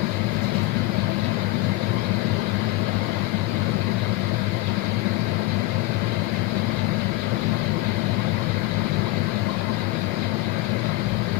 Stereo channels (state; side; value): quieter; right; 18.6 dB